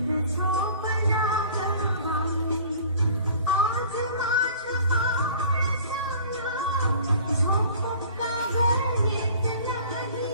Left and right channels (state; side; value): inverted; both; correlation -0.47